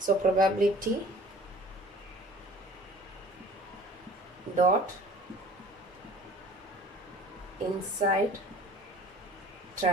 So probability dot inside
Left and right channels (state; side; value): normal; both; correlation 0.46